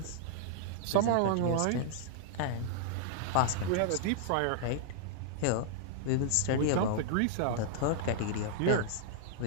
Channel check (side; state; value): both; different; correlation -0.01